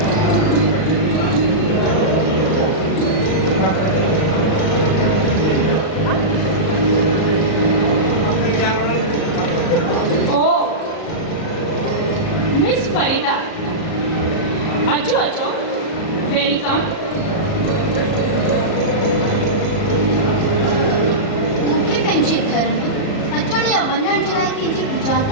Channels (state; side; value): late; right; 37 ms